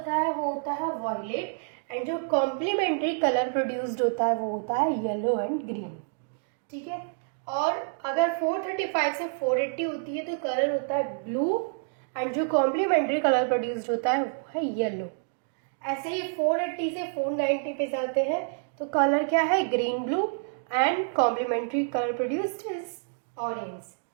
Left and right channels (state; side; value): silent; left; digital silence